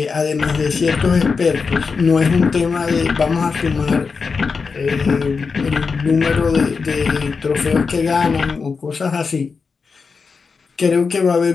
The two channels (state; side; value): quieter; right; 5.0 dB